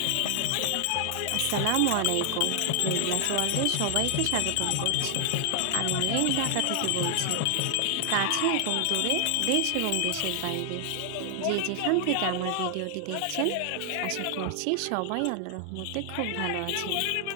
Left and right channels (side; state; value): both; different; correlation 0.00